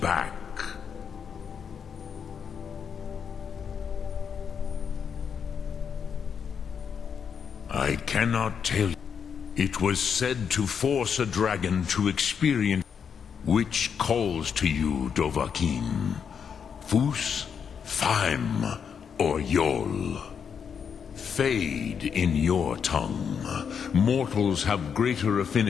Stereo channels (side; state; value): right; quieter; 7.0 dB